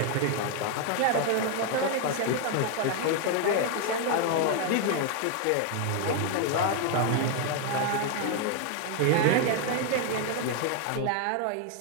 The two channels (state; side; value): different; both; correlation 0.01